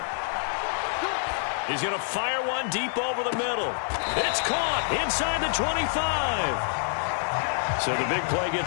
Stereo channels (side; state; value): right; silent; 60 dB below the other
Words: He's going to fire one deep over the middle. It's caught inside the 25. So the big play